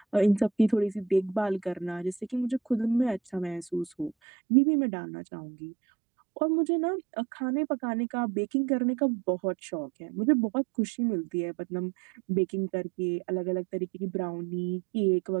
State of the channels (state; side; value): drops out; left; at 4.2 s